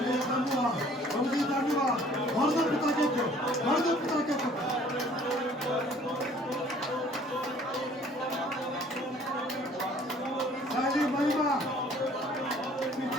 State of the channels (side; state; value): both; normal; correlation 0.55